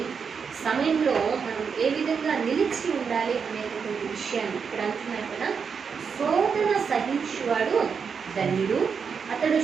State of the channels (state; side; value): quieter; left; 6.1 dB